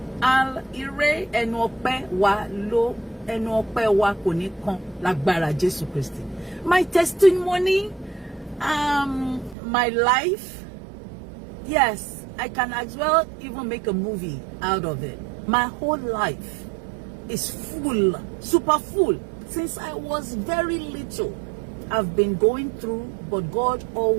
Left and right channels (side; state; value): left; drops out; at 9.6 s